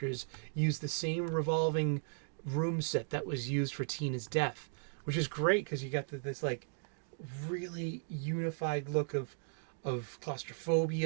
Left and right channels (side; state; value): left; silent; digital silence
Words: used the same revolving room set that was used for Tina's death, which is great because you got this like really unified look of